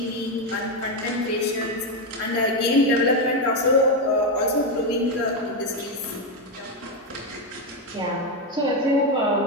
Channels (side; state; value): both; normal; correlation 0.07